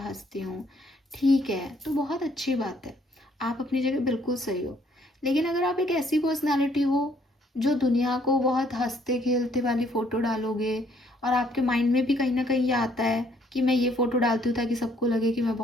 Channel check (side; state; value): both; normal; correlation 0.65